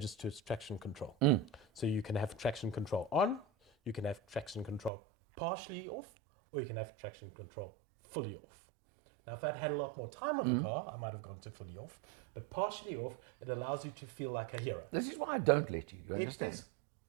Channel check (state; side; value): drops out; left; at 4.9 s